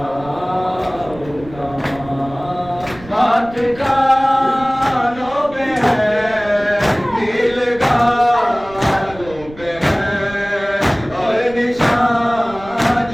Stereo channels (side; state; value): right; noise; rumble, 19 dB below the sound